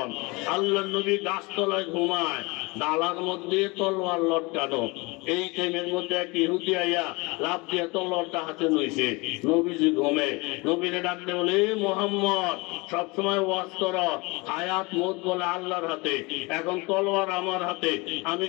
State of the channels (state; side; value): quieter; right; 25.8 dB